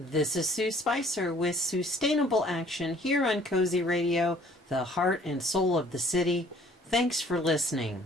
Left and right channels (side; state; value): both; normal; correlation 0.56